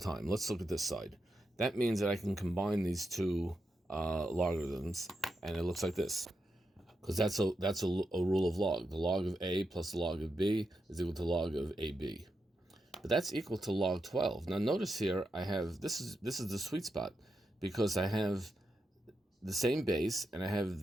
Let's look at this side. That means that I can combine these two logarithms, and it looks like this. Because that's a rule of log. The log of a plus the log of b is equal to log of ab. But that's equal to log 12. Now notice here I have, this is the sweet spot, because I have the same base and I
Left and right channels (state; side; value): normal; both; correlation 0.86